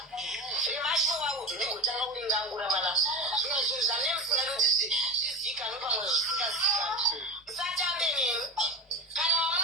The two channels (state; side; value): normal; both; correlation 0.24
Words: Zvemashuwa uto ndigotanga kuningangura mana. Zvimwe zvinhu zvamene musinga kuti zvizikanwe pamwe zvisingazikanwe. Musatambe nemi. Kana